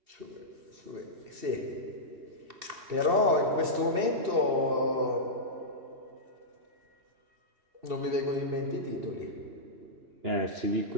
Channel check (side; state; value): left; late; 2.7 ms